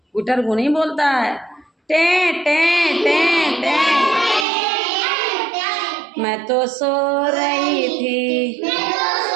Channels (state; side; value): drops out; left; at 4.5 s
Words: गुटर गू नहीं बोलता है, टे टे टे टे। मैं तो सो रही थी,